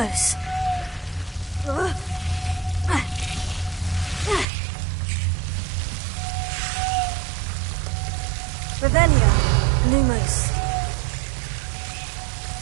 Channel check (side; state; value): left; drops out; at 4.5 s